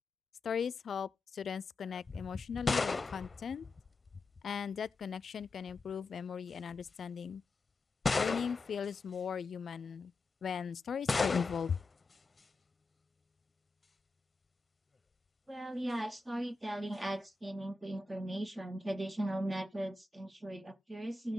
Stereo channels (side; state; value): right; quieter; 3.4 dB